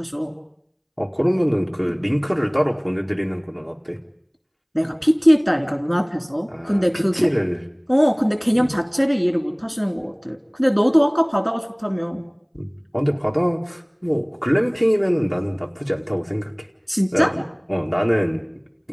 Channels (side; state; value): both; identical; correlation 1.00